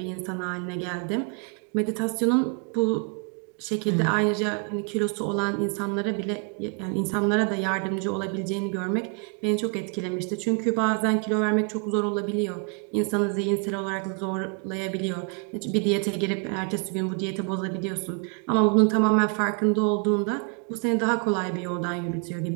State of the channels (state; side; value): quieter; left; 37.9 dB